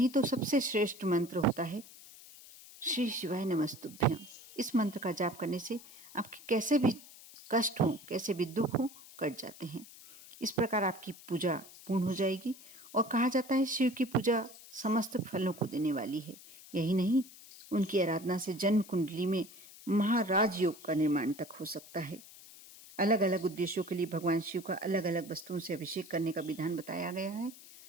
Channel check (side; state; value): left; noise; hiss, 19 dB below the sound